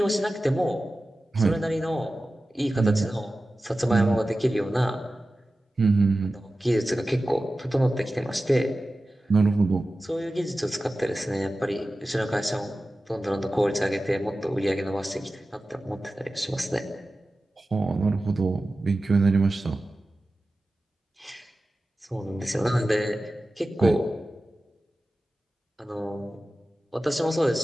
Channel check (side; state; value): both; normal; correlation 0.95